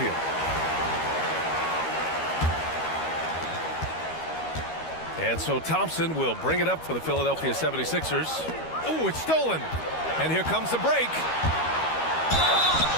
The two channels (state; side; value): late; right; 13 ms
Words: And so Thompson will bring it up for the Philadelphia 76ers. Oh, it's stolen. And here comes the break.